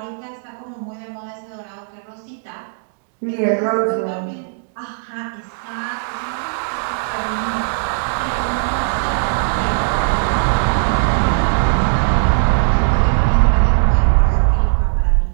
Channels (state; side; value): silent; left; digital silence